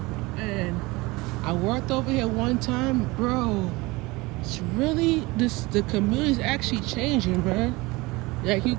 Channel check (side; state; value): left; quieter; 22.8 dB